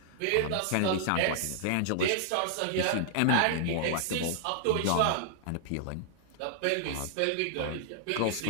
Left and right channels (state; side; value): different; both; correlation -0.01